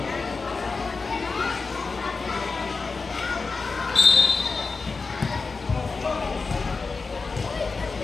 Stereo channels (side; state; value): right; quieter; 4.3 dB